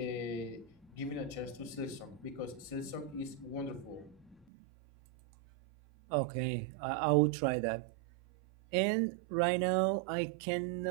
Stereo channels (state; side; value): drops out; left; at 4.5 s